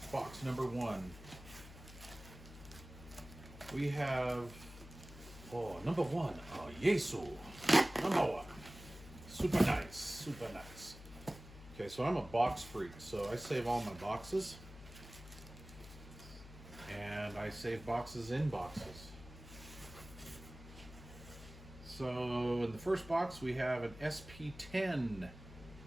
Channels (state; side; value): noise; left; hum, 16 dB below the sound